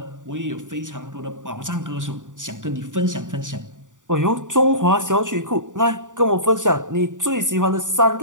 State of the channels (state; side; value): late; left; 0.87 ms